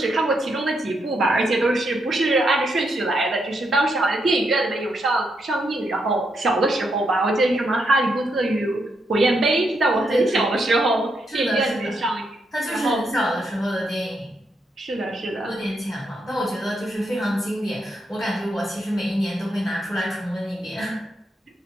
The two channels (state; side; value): normal; both; correlation 0.80